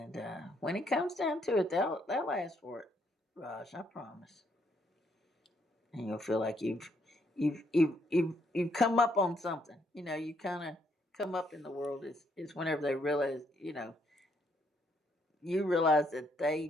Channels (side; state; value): both; normal; correlation 0.72